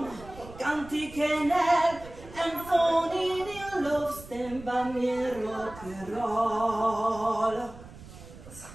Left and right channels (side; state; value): right; noise; rumble, 17 dB below the sound